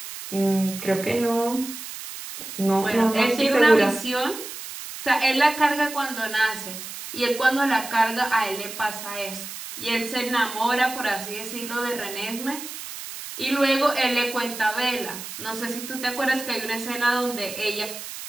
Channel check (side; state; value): right; noise; hiss, 10 dB below the sound